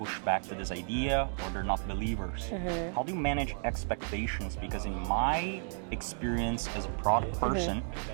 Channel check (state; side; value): silent; left; 56 dB below the other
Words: back to this idea or they're not believers. How do you manage expectations? Because in my experience as a product person,